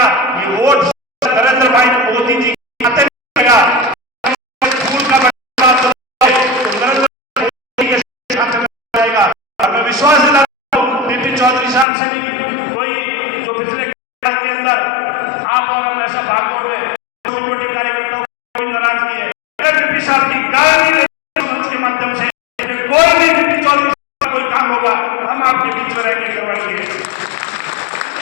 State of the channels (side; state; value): right; drops out; at 11.9 s